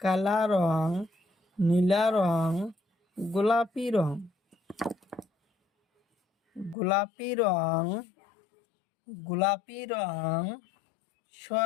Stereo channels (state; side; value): drops out; right; at 6.8 s